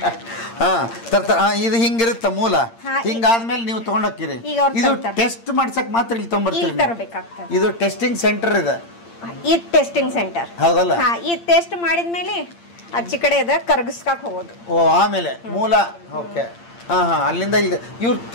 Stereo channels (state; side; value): late; right; 8.7 ms